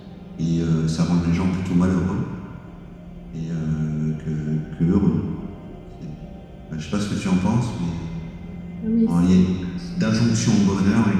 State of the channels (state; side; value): identical; both; correlation 1.00